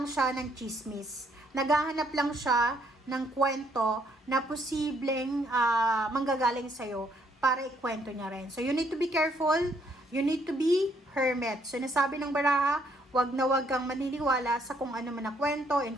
siya ng chismis. Naghahanap lang siya ng kwento na posibleng manggagaling sa'yo para ikwento niya rin. So you need to be careful. You need to be hermit. So nasabi ng baraha, wag na wag kang maniniwala sa kung ano man na kwento,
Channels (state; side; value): normal; both; correlation 0.69